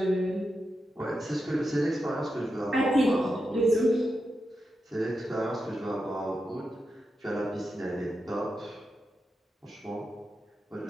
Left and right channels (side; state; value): both; normal; correlation 0.88